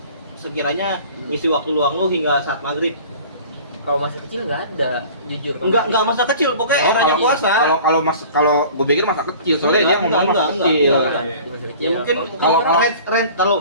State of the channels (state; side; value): inverted; both; correlation -0.44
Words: sekiranya ngisi waktu luang lu hingga saat maghrib? Kalau masih kecil nggak ada, jujur. Enggak masa kecil, pokoknya eranya puasa. Kalau gue pikir masa kecil soalnya dia ngomong masa kecil. enggak. Di masa kecil. Ya mungkin Kalau- kalau